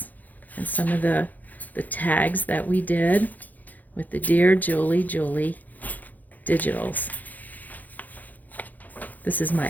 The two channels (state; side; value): late; right; 0.082 ms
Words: and some of the tags that we did with the Dear Julie Julie digitals. This is